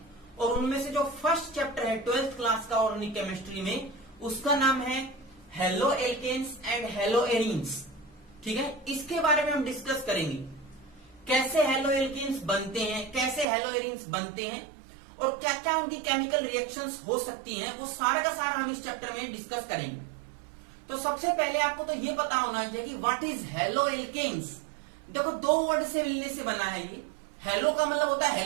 और उनमें से जो फर्स्ट चैप्टर है 12th क्लास का ऑर्गेनिक केमिस्ट्री में, उसका नाम है halo alkanes and halo arenes. ठीक है, इसके बारे में हम डिस्कस करेंगे कैसे हेलो एल्केन्स बनते हैं, कैसे हेलो एरीन्स बनते हैं और क्या क्या उनकी केमिकल रिएक्शंस हो सकती हैं, वो सारा का सारा हम इस चैप्टर में डिस्कस करेंगे। तो सबसे पहले आपको तो ये पता होना चाहिए कि व्हाट इज हेलो एल्केन्स। देखो, 2 वर्ड से मिलने से बना है ये। हेलो का मतलब होता है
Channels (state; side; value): drops out; left; at 13.5 s